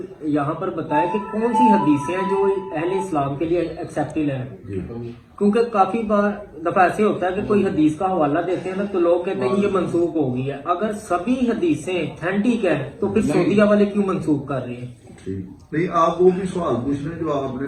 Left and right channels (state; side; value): identical; both; correlation 1.00